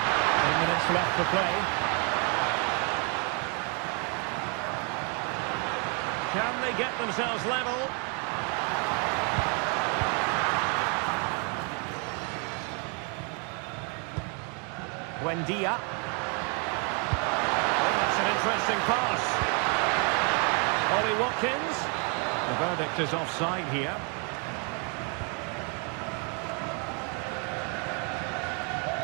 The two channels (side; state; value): left; quieter; 36.4 dB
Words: minutes left to play. Can they get themselves level? Buendia. Interesting pass. Ollie Watkins. The verdict is offside here.